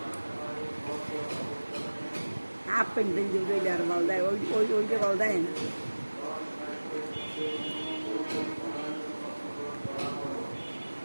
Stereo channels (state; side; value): inverted; both; correlation -1.00